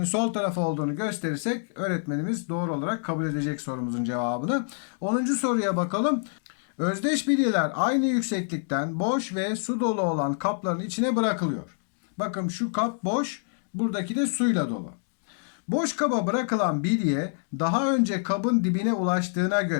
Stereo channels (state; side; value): silent; right; digital silence